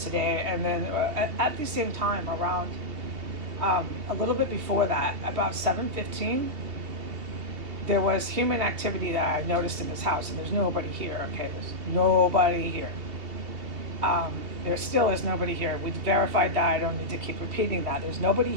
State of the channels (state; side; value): late; left; 2.8 ms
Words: today. And then at the same time, around a little bit before that, about 7:15, there was human activity that I noticed in this house, and there's nobody here. Okay, there's nobody here. There still is nobody here. We verified that. I don't need to keep repeating that. There's nobody